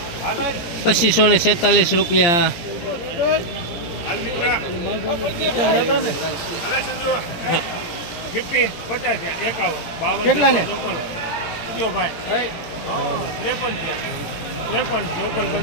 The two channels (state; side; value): late; right; 17 ms